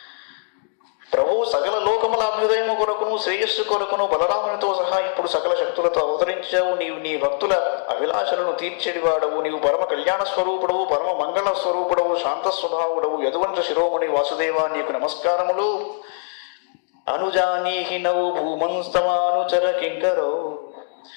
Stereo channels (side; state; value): right; silent; digital silence